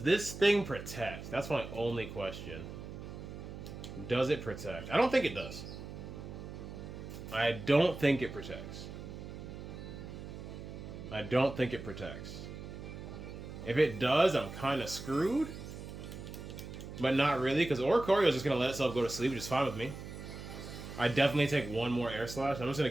this thing protect? That's my only question. Does it protect? I don't think it does. I don't think it protects. I don't think it protects. If it does, I'm kind of screwed. But not really, because Oricorio is just going to let itself go to sleep, which is fine with me. I definitely take one more air slash. I'm just going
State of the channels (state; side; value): noise; right; hum, 10 dB below the sound